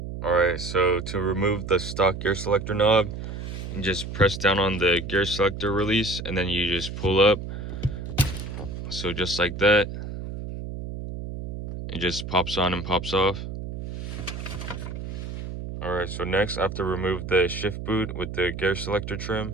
All right, so to remove the stock gear selector knob, you just press down on the gear selector release, and then you just pull up. So just like that, it just pops on and pops off. Alright, so next I have to remove the shift boot with the gear selector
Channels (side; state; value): right; noise; hum, 7 dB below the sound